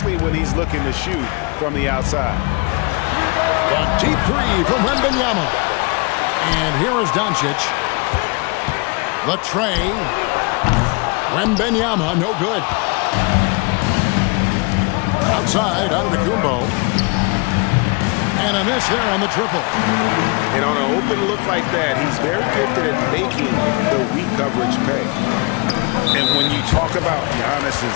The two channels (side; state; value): right; quieter; 30.0 dB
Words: when he's looking to shoot from the outside? The deep three from Wembanyama. And here is Doncic. The tray. Wembanyama, no good. Outside, out of the Kumbo. And a miss there on the triple. And on an open look like that, he's very gifted at making the weak coverage pay. And when you talk about Giannis's